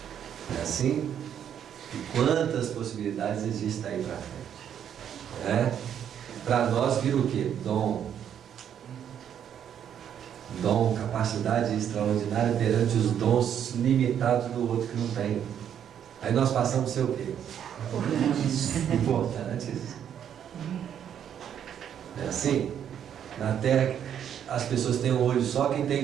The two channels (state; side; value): quieter; left; 9.2 dB